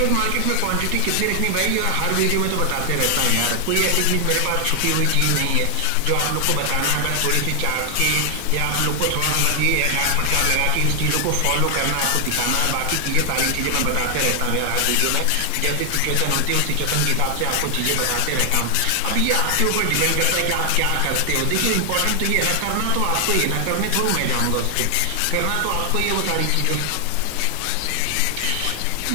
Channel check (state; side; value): different; both; correlation 0.00